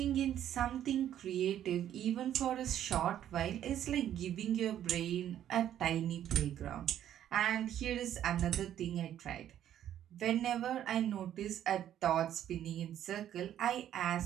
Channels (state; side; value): quieter; left; 11.0 dB